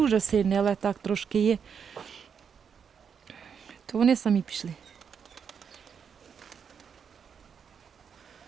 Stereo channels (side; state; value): left; quieter; 6.9 dB